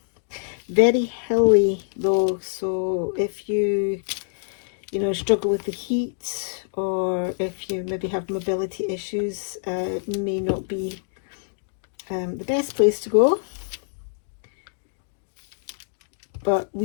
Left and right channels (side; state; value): right; silent; digital silence